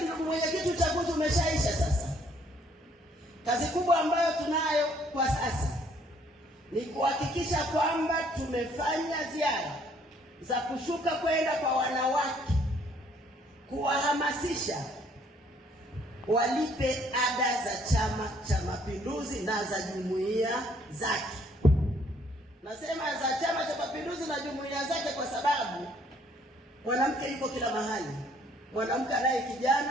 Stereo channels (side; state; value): both; normal; correlation 0.64